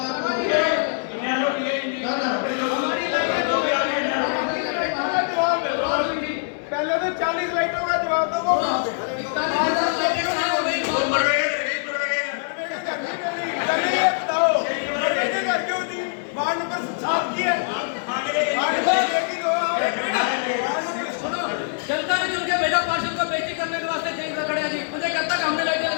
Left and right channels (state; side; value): silent; right; 63 dB below the other